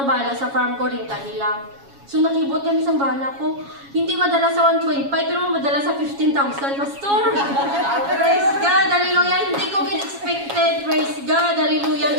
bala sa farm ko rin lang. So nakibot kami sa bala ko, hindi madala sa 1.5 pero madala sa 15,000, Pastor. Praise God, hallelujah, hindi ko expected, praise God,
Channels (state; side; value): late; left; 7.2 ms